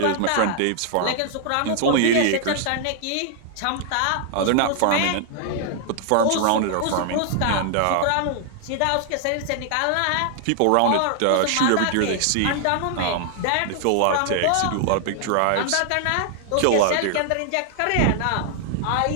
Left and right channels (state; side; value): different; both; correlation 0.00